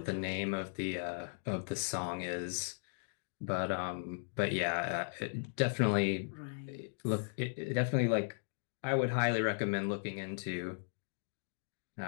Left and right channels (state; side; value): silent; right; digital silence